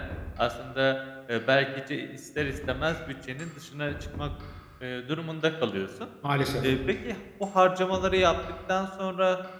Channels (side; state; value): both; identical; correlation 1.00